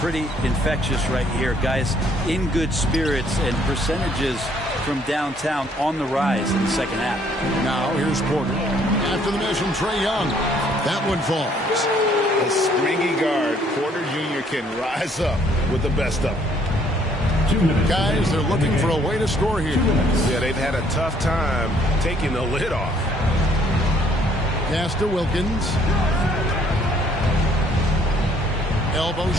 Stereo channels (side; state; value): both; normal; correlation 0.64